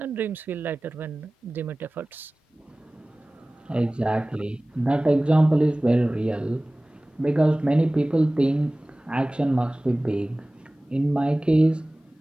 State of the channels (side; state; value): both; normal; correlation 0.98